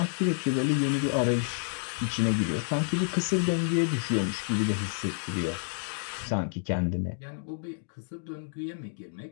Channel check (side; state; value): right; silent; digital silence